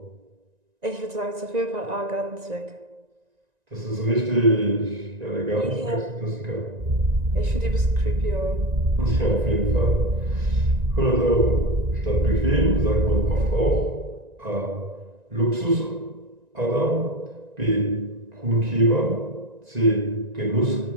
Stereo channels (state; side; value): late; left; 1.9 ms